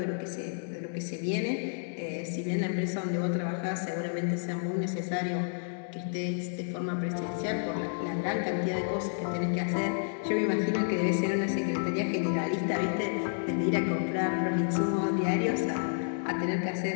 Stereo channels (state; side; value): silent; right; digital silence